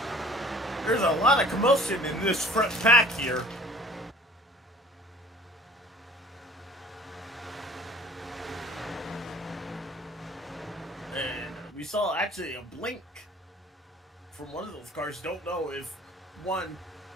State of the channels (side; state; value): both; normal; correlation 0.50